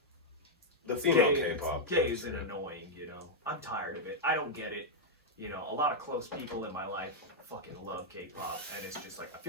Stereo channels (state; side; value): normal; both; correlation -0.04